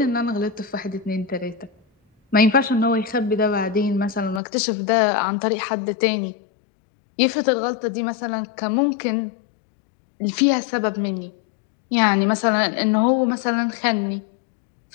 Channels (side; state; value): right; drops out; at 4.4 s